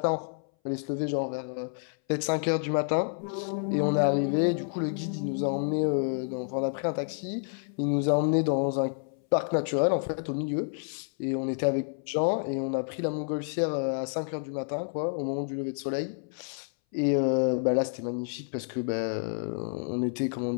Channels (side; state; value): right; silent; 58 dB below the other